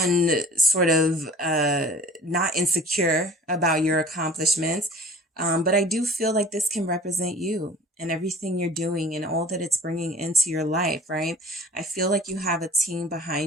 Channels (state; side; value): normal; both; correlation 0.47